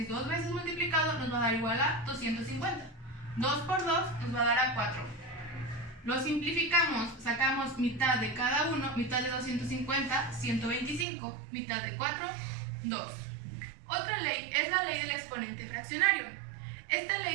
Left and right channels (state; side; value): drops out; left; at 11.1 s